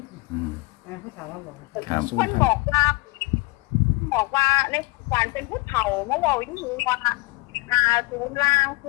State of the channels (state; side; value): quieter; right; 24.2 dB